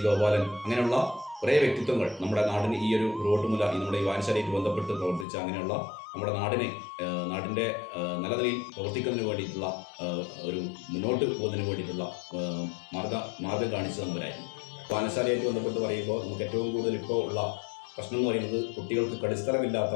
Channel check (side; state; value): right; drops out; at 5.2 s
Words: ഗോപാലൻ, അങ്ങനെയുള്ള കുറേ വ്യക്തിത്വങ്ങൾ നമ്മുടെ നാടിന് ഈ ഒരു റോട്ടുമുല ഈ നമ്മുടെ ഈ വായനശാലയിൽ ബന്ധപ്പെട്ട് പ്രവർത്തിച്ച അങ്ങനെയുള്ള നമ്മുടെ നാടിൻ്റെ നല്ല നിലയിൽ പ്രവർത്തിക്കുന്നതിന് വേണ്ടിയിട്ടുള്ള ഒരു മുന്നോട്ട് പോകുന്നതിന് വേണ്ടിയിട്ടുള്ള മാർഗം കാണിച്ചു തന്നവരായിരുന്നു. വായനശാലയായിട്ട് ബന്ധപ്പെട്ട് പറയുമ്പോൾ നമുക്ക് ഏറ്റവും കൂടുതൽ ഇപ്പോൾ ഉള്ള പ്രശ്നം എന്ന് പറയുന്നത് കുട്ടികൾക്ക് കളിസ്ഥലമില്ലാത്ത